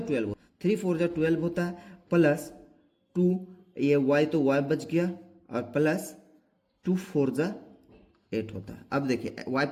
12, 3 4 जा 12 होता है, प्लस 2 ये y तो y बच गया, और प्लस 2 4 जा 8 होता है। अब देखिए y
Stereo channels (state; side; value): identical; both; correlation 1.00